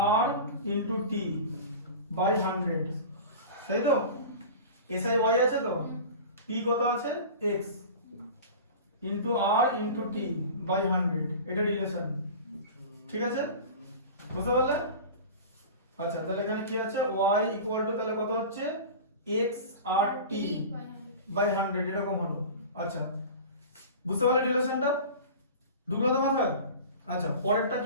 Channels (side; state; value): both; inverted; correlation -0.35